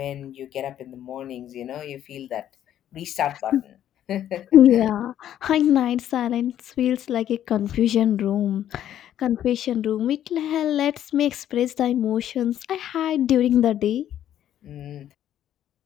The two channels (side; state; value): right; quieter; 11.1 dB